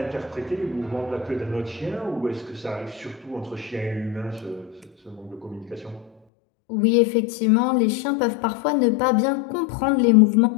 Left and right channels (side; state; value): right; drops out; at 6.1 s